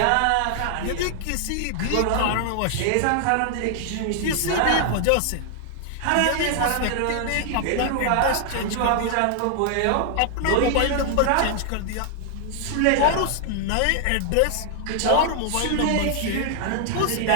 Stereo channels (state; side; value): different; both; correlation 0.00